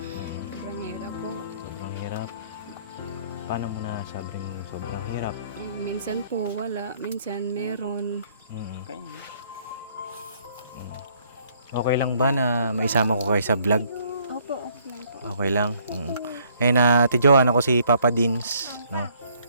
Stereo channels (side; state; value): both; inverted; correlation -0.64